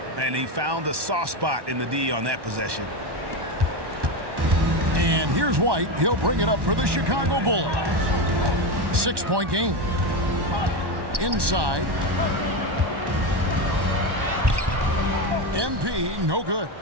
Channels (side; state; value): left; late; 1.1 ms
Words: And he found the soft spot in the D on that possession. And here's White. He'll bring it up for the Chicago Bulls. 6-point game. Inside. MP, no good.